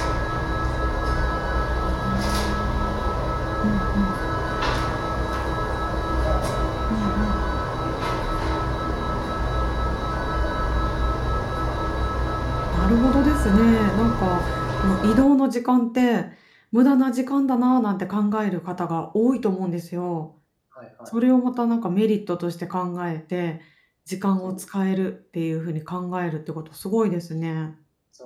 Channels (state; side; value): identical; both; correlation 1.00